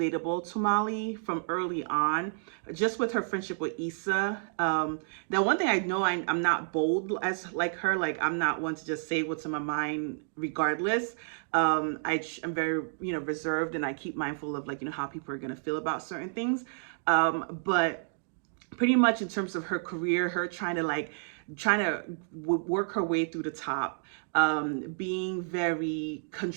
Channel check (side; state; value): left; silent; digital silence